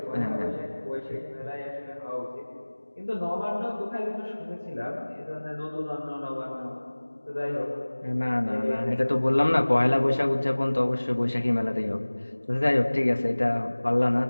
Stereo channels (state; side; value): inverted; both; correlation -1.00